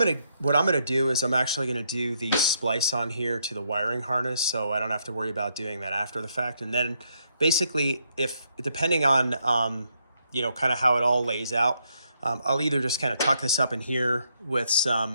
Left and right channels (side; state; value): both; inverted; correlation -0.75